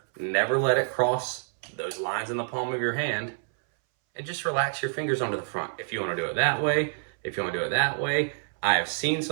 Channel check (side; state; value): left; silent; 60 dB below the other